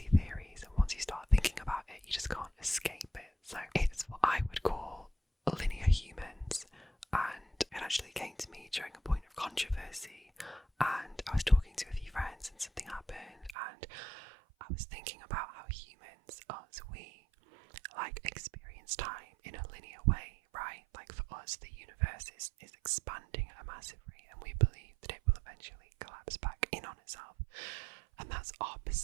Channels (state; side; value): drops out; left; at 13.6 s